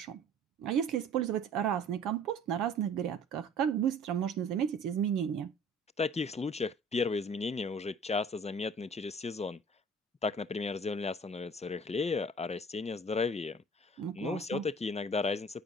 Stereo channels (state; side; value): normal; both; correlation 0.48